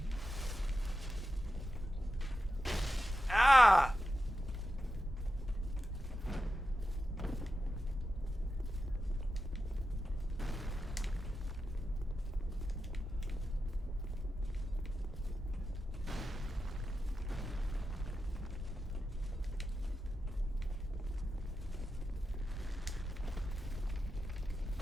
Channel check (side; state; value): both; normal; correlation 0.90